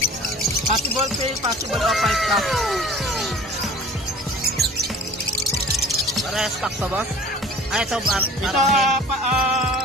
Possible pay, possible off 5 stock. Para stock to, boss? Ah, ito, Ito,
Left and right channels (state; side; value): normal; both; correlation 0.44